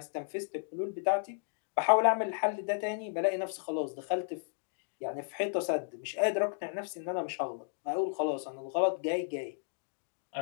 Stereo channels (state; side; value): silent; right; digital silence